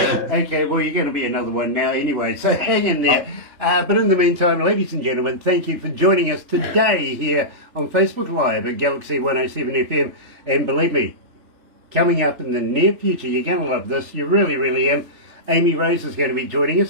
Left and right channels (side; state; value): left; late; 3.4 ms